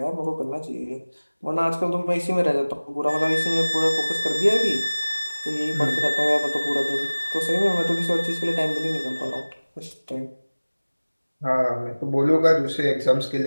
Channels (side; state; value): both; inverted; correlation -1.00